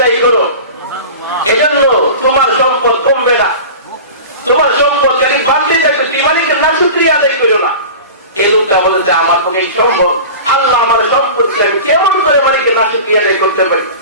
করো, এজন্য তোমার সম্পদ কমবে না। তোমার সম্পদ খালি বাড়তে যাচ্ছে, তুমি মালিকের না শুকরিয়া আদায় করো না। এই লোকটা বলতে আমার পক্ষে সম্ভব? আল্লাহ আমার সম্পদ আমি কেমন করে মালিকের না শুকরিয়া আদায় করতে পারি?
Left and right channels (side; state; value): both; inverted; correlation -0.35